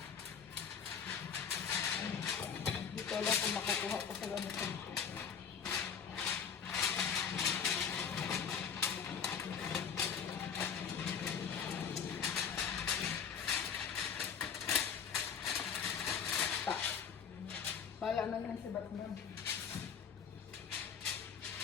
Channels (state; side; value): quieter; right; 7.1 dB